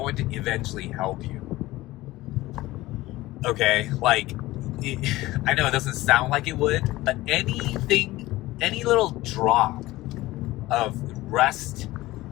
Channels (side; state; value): right; quieter; 18.0 dB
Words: to eventually help you. Okay, I know it doesn't sound like it would, but any little drop of rest